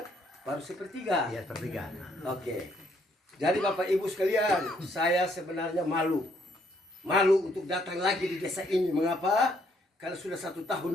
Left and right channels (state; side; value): normal; both; correlation 0.69